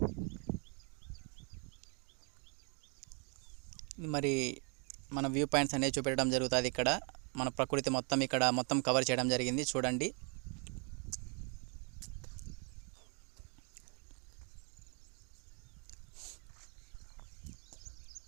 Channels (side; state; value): left; quieter; 36.9 dB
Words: మరి మన వ్యూ పాయింట్స్ అనేవి చూపెట్టడం జరుగుతుంది. ఇక్కడ మన ప్రకృతి మొత్తం కవర్ చేయడం జరిగింది చూడండి.